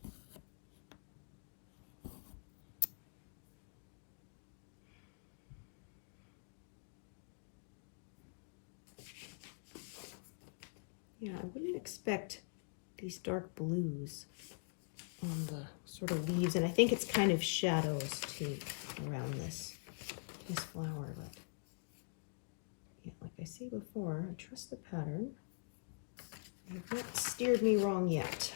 Yeah, I wouldn't expect these dark blues on the sort of leaves, and I think it's kind of shadows too around this flower, but yeah, like I say before, I trust the pattern. They have not steered me wrong yet.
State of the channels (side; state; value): right; silent; digital silence